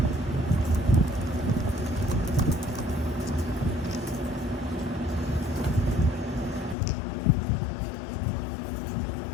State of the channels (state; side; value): drops out; right; at 6.8 s